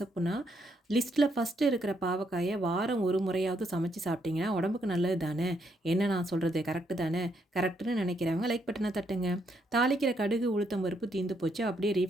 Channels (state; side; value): normal; both; correlation 0.75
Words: லிஸ்ட்டில் ஃபஸ்ட்டு இருக்கிற பாவக்காயை வாரம் ஒரு முறையாவது சமைச்சு சாப்பிட்டிங்கன்னா உடம்புக்கு நல்லது தானே. என்ன நான் சொல்கிறது கரெக்டு தானே? கரெக்டுன்னு நினைக்கிறவங்க லைக் பட்டனை தட்டுங்க. தாளிக்கிற கடுகு உளுத்தம் பருப்பு தீந்து போச்சு, அப்படியே